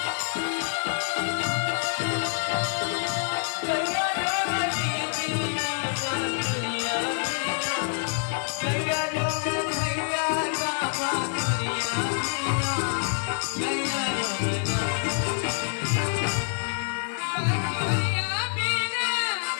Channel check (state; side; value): silent; right; 60 dB below the other